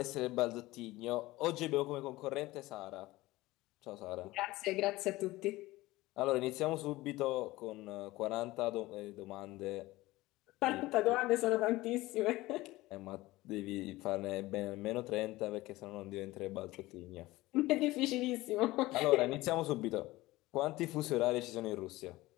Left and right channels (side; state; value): right; quieter; 18.8 dB